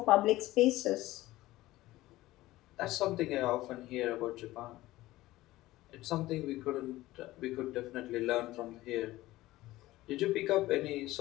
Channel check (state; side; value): quieter; right; 17.2 dB